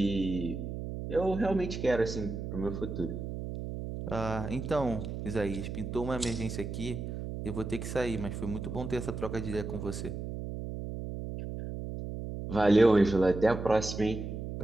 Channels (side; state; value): right; noise; hum, 6 dB below the sound